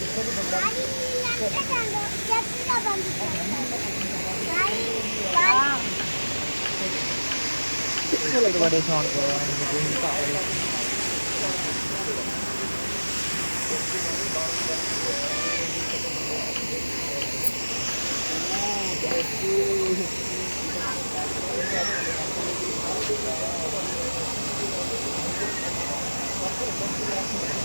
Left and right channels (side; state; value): both; inverted; correlation -1.00